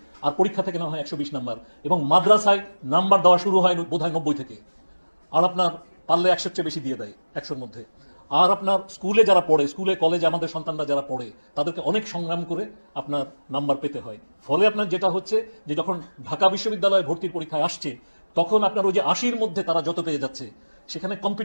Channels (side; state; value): both; inverted; correlation -1.00